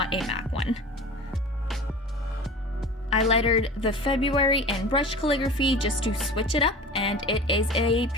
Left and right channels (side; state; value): both; normal; correlation 0.37